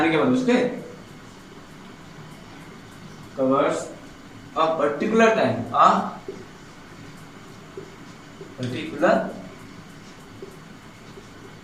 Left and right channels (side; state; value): both; identical; correlation 1.00